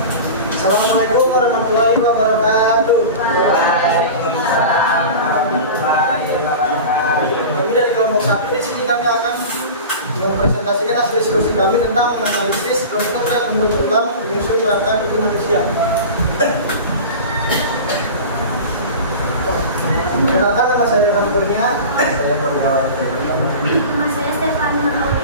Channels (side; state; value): both; inverted; correlation -0.33